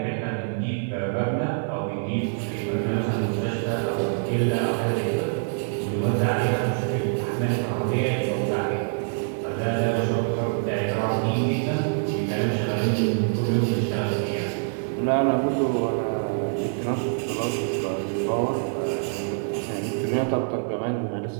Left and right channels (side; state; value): left; silent; digital silence